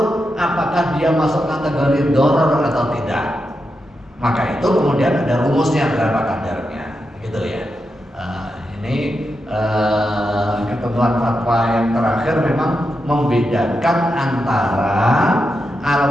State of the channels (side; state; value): both; normal; correlation 0.87